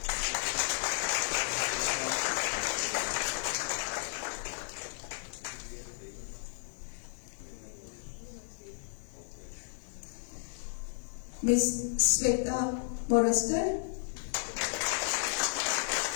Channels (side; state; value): right; silent; 56 dB below the other